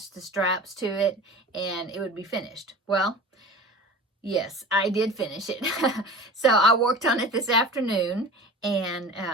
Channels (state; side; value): normal; both; correlation 0.37